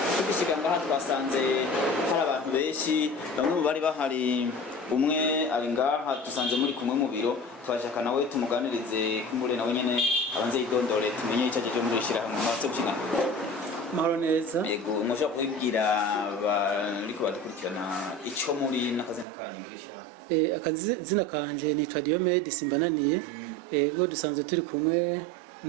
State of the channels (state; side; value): drops out; left; at 19.2 s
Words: Tugishika ngaha twasanze hari abantu benshi bamwe mu bari bahari umwe ari ngaha dusanze muri kumwe mu biro twashaka nawe tumuganirize kumure nawe nyene abanze yidondore tumenye icyaje cyo muri shira hamwe matse gushika mahoro neza. Yego mushaka kubwira bariko badukurikirana ico muri nakazina kanyu muri shira hamwe. Akazina kanje ni Diomede Simbananiye. Bo dusanze turi kumwe